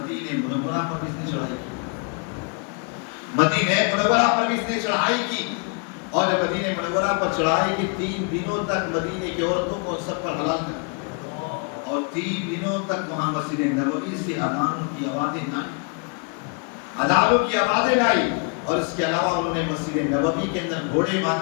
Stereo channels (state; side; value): quieter; right; 37.3 dB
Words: منورہ پر بھی اس نے چڑھائی کی، مدینہ منورہ پر بھی اس نے چڑھائی کی، اور جب مدینہ منورہ پر چڑھائی کی 3 دنوں تک مدینہ کی عورتوں کو سب پر حلال کر، اور 3 دنوں تک وہاں مسجد نبوی سے اذانوں کی آوازیں نہ آئی، اذانوں کی آوازیں نہ آئی۔ اور اس کے علاوہ انہوں نے مسجد نبوی کے اندر گھوڑے